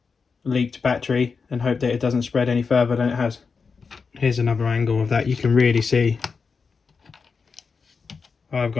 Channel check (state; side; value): quieter; right; 5.1 dB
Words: leaked battery and hope that it doesn't spread any further than it has. Here's another angle of that. You can really see I've